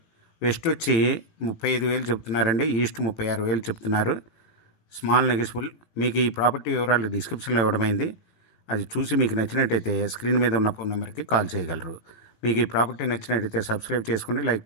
వెస్ట్ వచ్చి 35,000 చెప్తున్నారండి. ఈస్ట్ 36,000 చెప్తున్నారు. Small negotiable. మీకు ఈ ప్రాపర్టీ వివరాలు డిస్క్రిప్షన్లో ఇవ్వడమైంది. అది చూసి మీకు నచ్చినట్టయితే స్క్రీన్ మీద ఉన్న ఫోన్ నెంబర్కి కాల్ చేయగలరు. మీకు ఈ ప్రాపర్టీ నచ్చినట్టయితే సబ్స్క్రైబ్ చేసుకోండి, లైక్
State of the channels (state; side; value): late; right; 18 ms